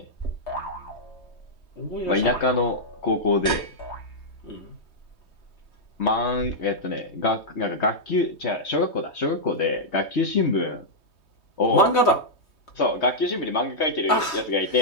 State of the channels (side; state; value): right; late; 3.2 ms